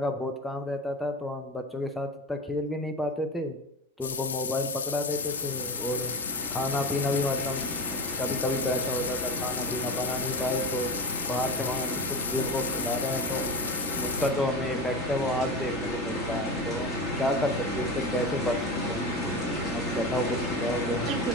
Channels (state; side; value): normal; both; correlation 0.25